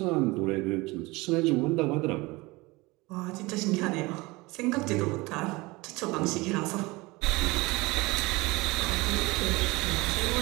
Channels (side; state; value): left; quieter; 23.1 dB